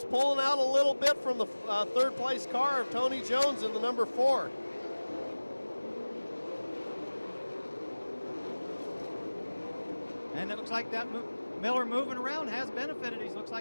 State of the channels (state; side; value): inverted; both; correlation -1.00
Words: pulling out a little bit from the third place car of Tony Jones in the number 4. And it looks like that Miller moving around has benefited. He looks